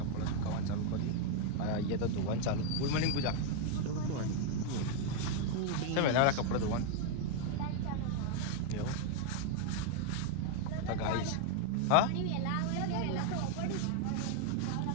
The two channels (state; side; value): different; both; correlation 0.01